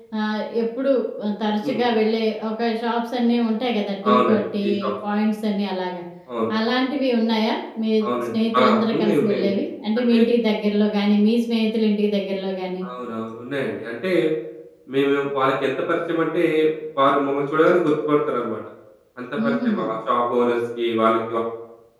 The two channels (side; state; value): both; identical; correlation 1.00